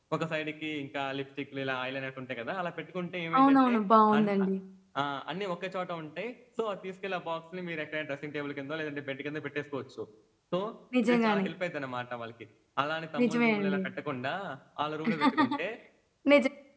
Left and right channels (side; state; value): both; identical; correlation 1.00